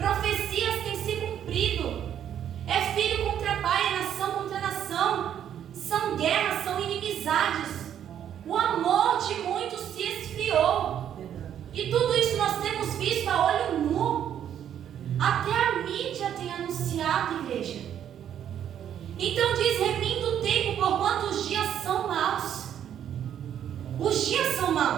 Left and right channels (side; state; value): left; quieter; 9.8 dB